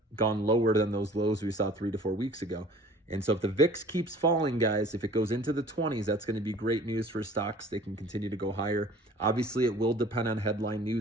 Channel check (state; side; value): normal; both; correlation 0.48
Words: gone lower than those lows we saw 3 to 4 weeks ago. And so if the VIX keeps falling, guys, if it goes into the 20s, that's going to be great news for stocks. They can continue to go higher. Obviously, it will depend on headline